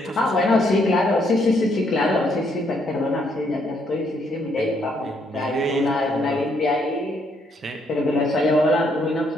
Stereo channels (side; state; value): both; normal; correlation 0.72